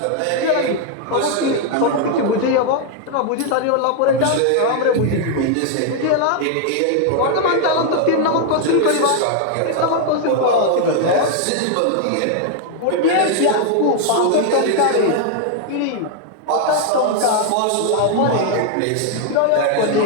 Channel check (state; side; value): different; both; correlation 0.00